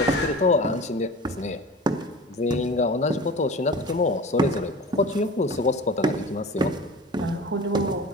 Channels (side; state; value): both; normal; correlation 0.37